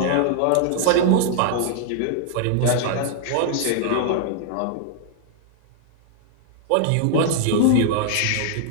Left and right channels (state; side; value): different; both; correlation 0.00